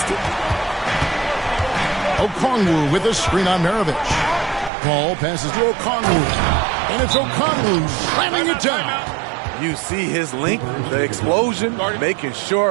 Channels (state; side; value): drops out; left; at 4.7 s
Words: Okongwu with a screen on Maravich. Paul passes to Okongwu. And it's Okongwu slamming it down. You see his length, the explosion, making